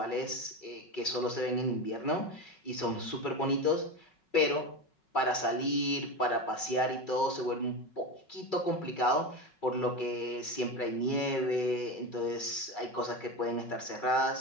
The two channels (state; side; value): late; right; 5.4 ms